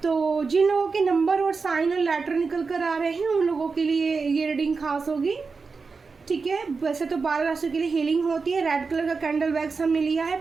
तो जिन लोगों के नंबर और साइन और लेटर निकल कर आ रहे हैं उन लोगों के लिए ये रीडिंग खास होगी। ठीक है। वैसे तो 12 राशियों के लिए हीलिंग होती है। रेड कलर का कैंडल वैक्स हमने लिया है,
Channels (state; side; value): quieter; left; 4.7 dB